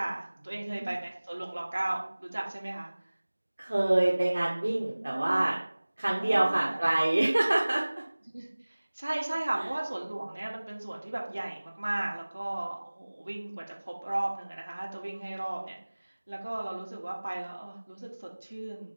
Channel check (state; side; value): inverted; both; correlation -1.00